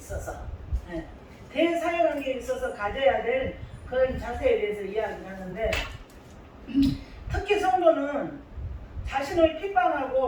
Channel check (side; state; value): both; identical; correlation 1.00